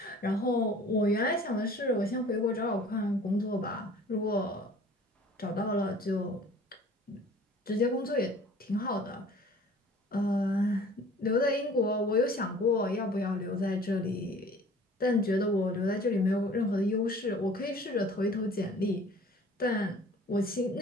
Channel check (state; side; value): normal; both; correlation 0.49